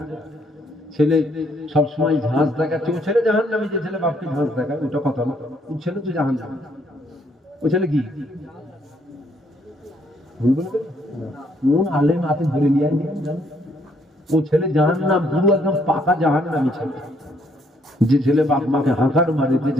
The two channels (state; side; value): normal; both; correlation 0.69